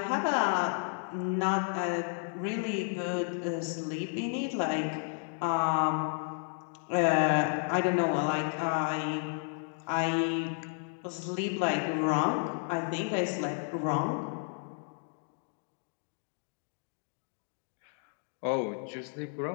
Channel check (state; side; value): silent; right; 56 dB below the other